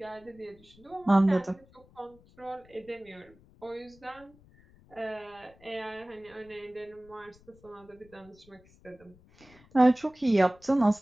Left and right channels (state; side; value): noise; left; rumble, 27 dB below the sound